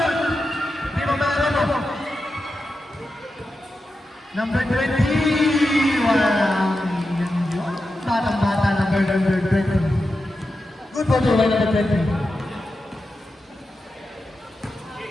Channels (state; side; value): normal; both; correlation 0.90